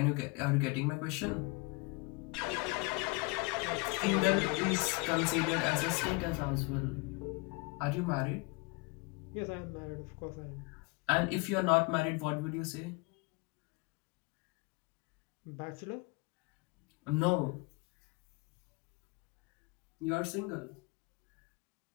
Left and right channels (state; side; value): quieter; right; 26.9 dB